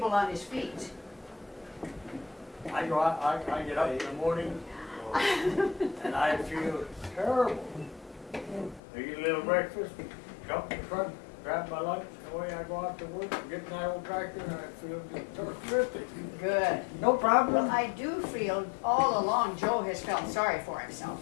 on his feet. I go out, I get up in the morning, And I feel terrible. I eat a little breakfast, jump in the truck, grab my lunch, and away I go out to work, get in that old tractor, and I feel just terrific. Good. No problem. Well, I do feel all along Joe has felt sorry for himself.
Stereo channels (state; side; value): drops out; right; at 8.8 s